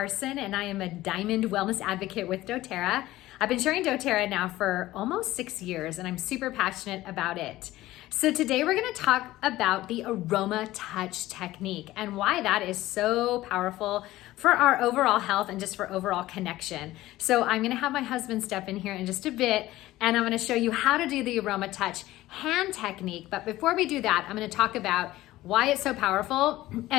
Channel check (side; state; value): right; quieter; 16.5 dB